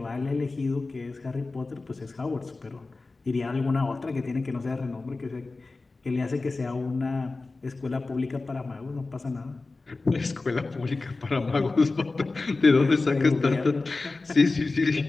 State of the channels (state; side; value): quieter; right; 3.6 dB